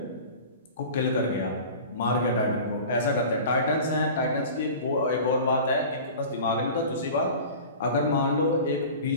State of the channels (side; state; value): both; inverted; correlation -0.37